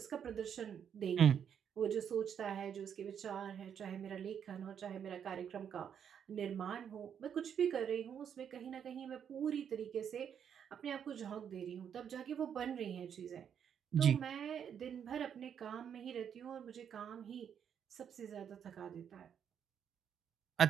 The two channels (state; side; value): quieter; left; 8.2 dB